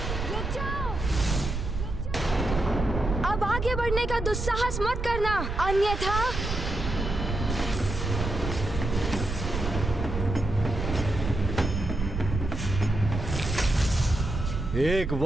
रुक जाओ। अब आगे बढ़ने का दुस्साहस मत करना, अन्यथा एक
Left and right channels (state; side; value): noise; right; rumble, 4 dB below the sound